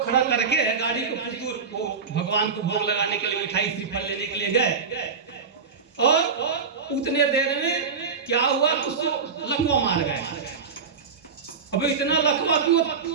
खड़ा करके गाड़ी को कुछ दूर वो भगवान को भोग लगाने के लिए मिठाई श्रीफल लेने के लिए गए और उतने देर में क्या हुआ कि उसको लकवा मार गए। अब इतना लकवा कि वो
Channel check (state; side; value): quieter; left; 5.5 dB